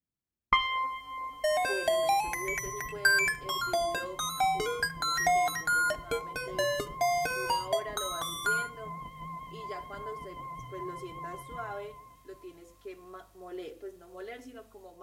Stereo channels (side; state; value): both; identical; correlation 1.00